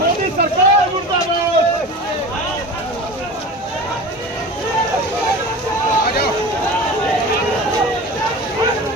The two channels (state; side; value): normal; both; correlation 0.33